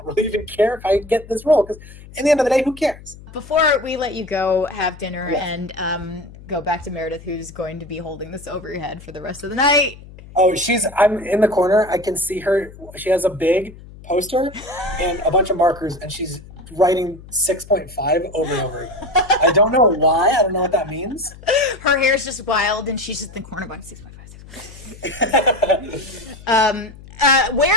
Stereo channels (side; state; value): left; noise; hum, 18 dB below the sound